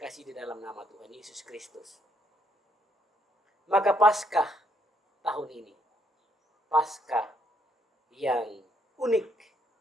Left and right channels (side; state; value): both; normal; correlation 0.71